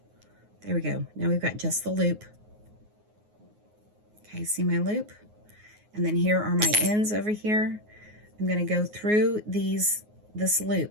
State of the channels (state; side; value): late; left; 9.5 ms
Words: There we go. Now we've got just the loop. Okay, see my loop? And then here are my ends over here. I'm going to go through this